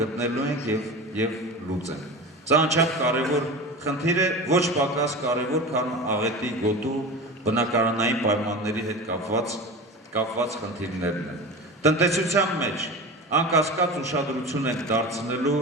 ենք եւ լուծենք։ Սա անչափ կարևոր խնդիր է, ոչ պակաս կարևոր, քան աղետի գոտու բնակարանային պայմանների հետ կապված խնդիրներն են։ Տնտեսության մեջ անկասկած ուշադրություն ենք դարձնելու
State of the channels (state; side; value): normal; both; correlation 0.30